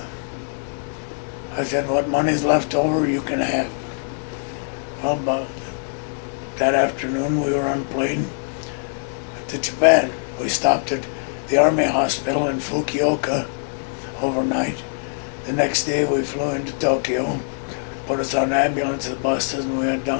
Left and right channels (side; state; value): right; silent; digital silence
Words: I said, "What money's left over, you can have." Well, about that afternoon, we were on a plane to Japan. We stopped at the Army Hospital in Fukuoka overnight. The next day, we flew into Tokyo, put us on ambulance buses, and we went